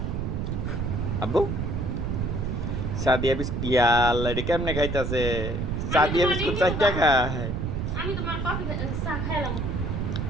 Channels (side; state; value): right; noise; rumble, 2 dB below the sound